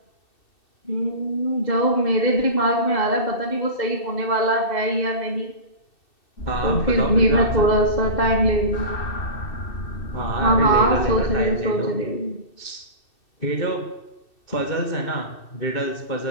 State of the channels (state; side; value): late; right; 2.6 ms